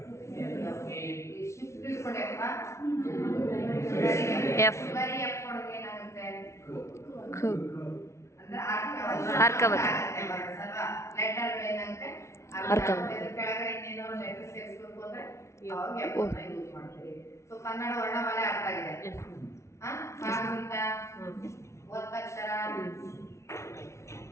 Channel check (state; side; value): late; right; 0.13 ms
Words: ಶಿಫ್ಟ್ ಇಟ್ಕೊಂಡೆಪ್ಪ ಎಫ್. ಬರೀ ಎಫ್ ಕೊಡೋಕೆ ಏನಾಗುತ್ತೆ? ಖ. ಅಂದ್ರೆ ಅರ್ಕವತ್. ಲೆಟರ್ ಏನಾಗುತ್ತೆ? ಅರ್ಕವತ್. ಕೆಳಗಡೆ ಇನ್ನೇನೋ ಲೆಟರ್ ಸೇರಿಸಬೇಕು ಅಂದ್ರೆ ಅವಾಗ ಎಫ್ ಅನ್ನ ಯೂಸ್ ಮಾಡ್ತೀವಿ. ಸೊ ಕನ್ನಡ ವರ್ಣಮಾಲೆ ಅರ್ಥ ಆಗಿದೆ. ಕಾಗುಣಿತ, ಒತ್ತಕ್ಷರ,